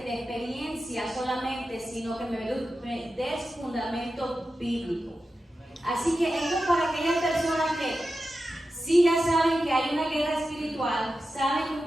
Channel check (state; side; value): normal; both; correlation 0.92